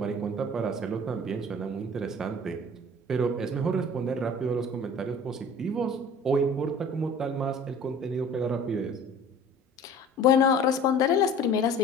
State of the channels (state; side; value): normal; both; correlation 0.45